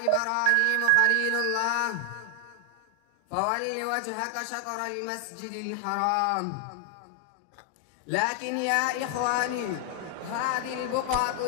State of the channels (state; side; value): different; both; correlation 0.00